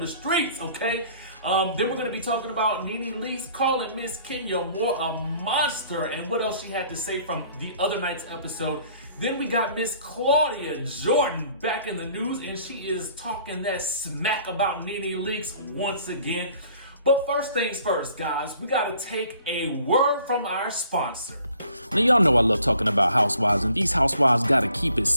streets, okay? Then we're going to be talking about NeNe Leakes calling Miss Kenya more a monster, and what else she had to say from the other night's episode. Then we got Miss Claudia Jordan back in the news, and she is talking that smack about NeNe Leakes once again. But first things first, guys, we got to take a word from our sponsor. Now, y'all know I love talking about housewives, and these housewives gotta keep it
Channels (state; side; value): inverted; both; correlation -0.57